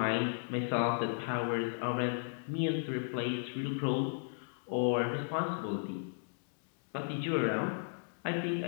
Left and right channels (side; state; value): right; silent; digital silence